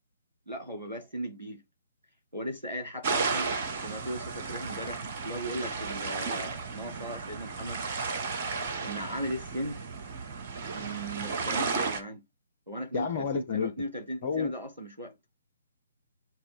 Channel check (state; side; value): inverted; both; correlation -0.56